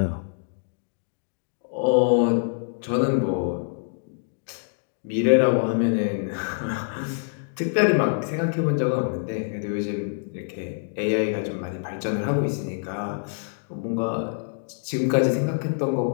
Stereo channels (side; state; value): right; silent; digital silence